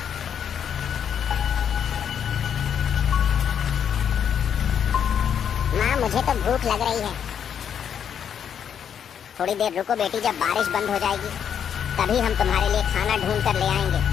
मुझे तो भूख लग रही है। थोड़ी देर रुको बेटी, जब बारिश बंद हो जाएगी तभी हम तुम्हारे लिए खाना ढूंढ कर ले आएंगे।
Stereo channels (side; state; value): right; quieter; 8.3 dB